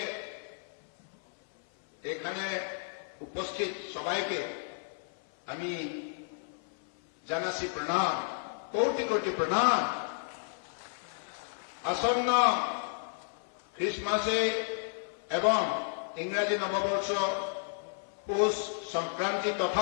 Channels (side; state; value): right; silent; 56 dB below the other